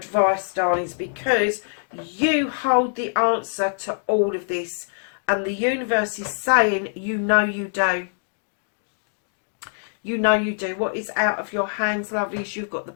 darlings, because you hold the answer to all of this. And the universe is saying, you know you do. You know you do. What is out of your hands, lovelies? You've got the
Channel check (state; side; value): silent; right; digital silence